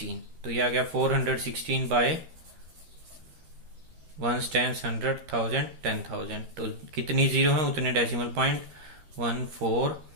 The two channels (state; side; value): late; left; 13 ms